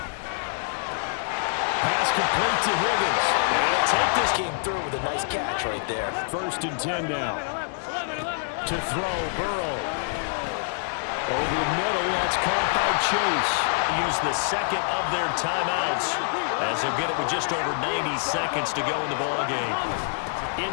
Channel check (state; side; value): silent; right; digital silence